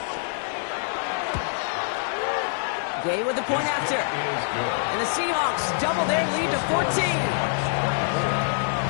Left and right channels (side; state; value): right; silent; digital silence